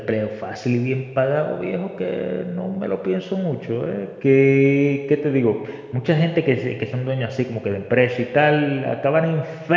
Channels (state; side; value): identical; both; correlation 1.00